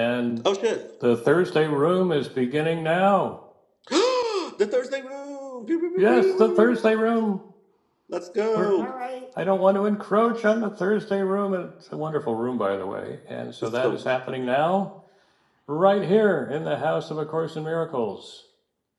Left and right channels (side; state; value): both; identical; correlation 1.00